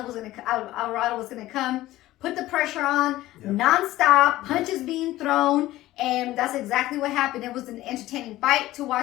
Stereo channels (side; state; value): right; quieter; 16.1 dB